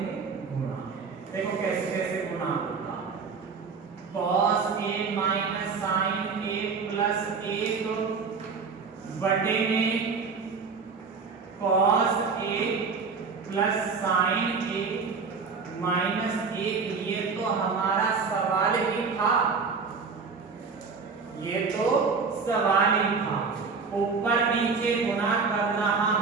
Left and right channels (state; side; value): quieter; left; 5.0 dB